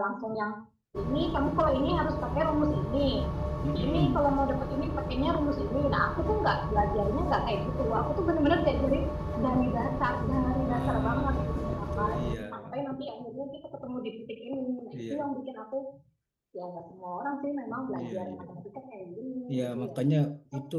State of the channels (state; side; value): identical; both; correlation 1.00